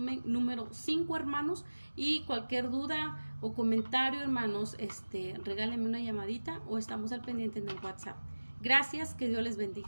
número 5, hermanos, y cualquier duda o comentario, hermanos, regálenme una llamadita o estamos al pendiente en el WhatsApp. Gracias, que Dios les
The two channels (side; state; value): both; inverted; correlation -1.00